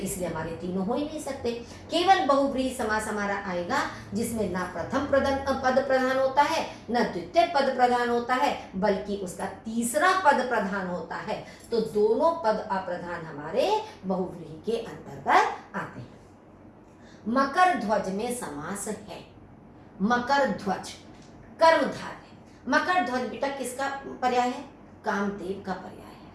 हमारे तीनों हो ही नहीं सकते। केवल बहुव्रीहि समास हमारा आएगा जिसमें ना प्रथम पद प्रधान होता है, ना द्वितीय पद प्रधान होता है, बल्कि उसका तीसरा पद प्रधान होता है। तो दोनों पद अप्रधान हमारे बहुव्रीहि के अंतर्गत आते हैं। मकर ध्वज में समास है। मकर ध्वज कर्मधारय। मकर ध्वज बेटा किसका पर्याय है? कामदेव का पर्याय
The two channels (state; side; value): identical; both; correlation 1.00